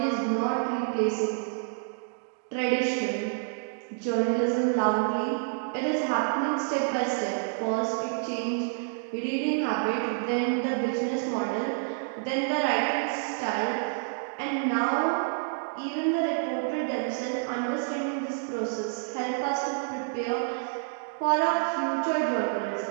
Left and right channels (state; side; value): silent; left; digital silence